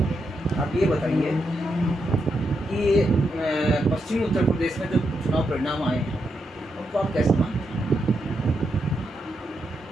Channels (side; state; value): both; normal; correlation 0.83